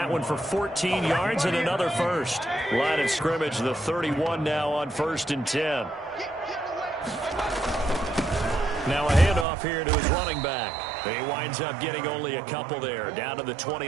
one for 14 yards and another 1st. Line of scrimmage, the 31 now on 1st and 10. Now a handoff here to his running back. He winds up getting only a couple there, down to the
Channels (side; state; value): left; drops out; at 9.5 s